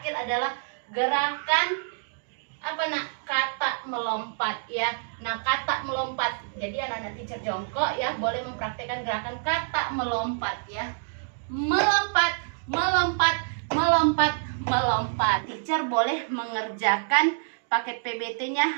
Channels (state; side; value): silent; left; digital silence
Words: adalah gerakan apa nak? Kata melompat ya. Nah, kata melompat. Jadi anak-anak teacher jongkok ya, boleh mempraktekkan gerakan kata melompat ya. Melompat, melompat, melompat, melompat. Teacher boleh mengerjakan paket PBT-nya